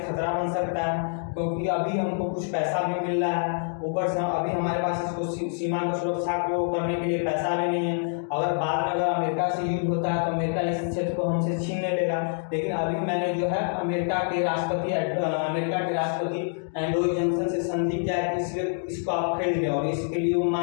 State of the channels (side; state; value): right; silent; digital silence